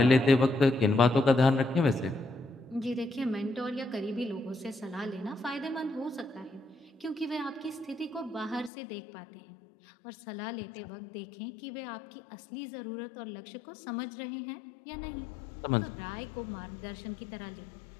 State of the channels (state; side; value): drops out; right; at 8.7 s